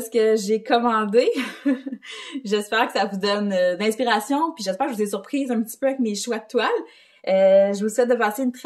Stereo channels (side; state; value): both; identical; correlation 1.00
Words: ce que j'ai commandé. J'espère que ça vous donne d'inspiration, puis j'espère que je vous ai surprise un petit peu avec mes choix de toiles. Je vous souhaite de passer une